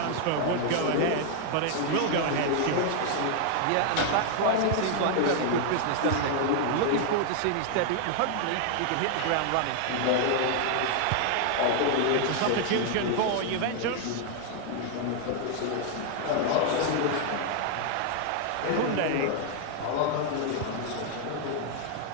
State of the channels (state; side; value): different; both; correlation 0.00